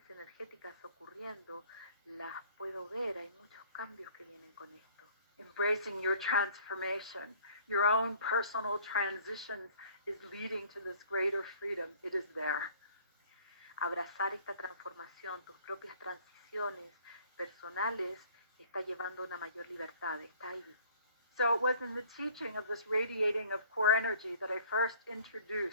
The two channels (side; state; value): both; inverted; correlation -0.54